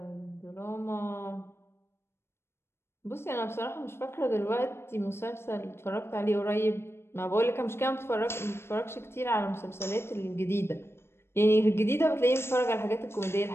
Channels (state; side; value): late; right; 0.12 ms